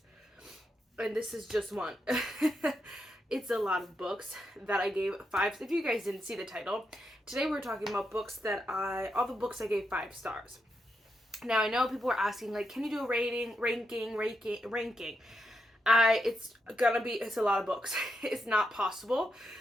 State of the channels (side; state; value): both; normal; correlation 0.83